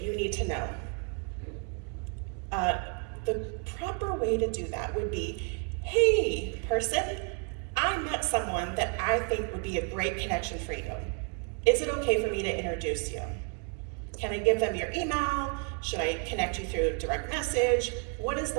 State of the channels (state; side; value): quieter; left; 39.4 dB